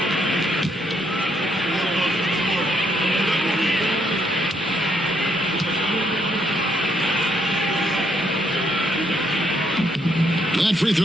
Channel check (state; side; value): normal; both; correlation 0.73